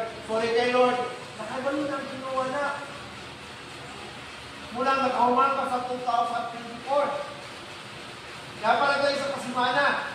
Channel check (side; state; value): both; identical; correlation 1.00